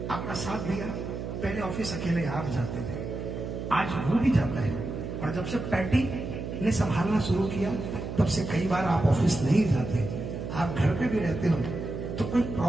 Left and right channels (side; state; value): right; noise; hum, 6 dB below the sound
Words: आपका साथ दिया, पहले ऑफिस अकेले आप जाते थे, आज वो भी जाता है। और जब से पैटी ने संभालना शुरू किया तब से कई बार आप ऑफिस नहीं जाते, आप घर पे भी रहते हो तो कोई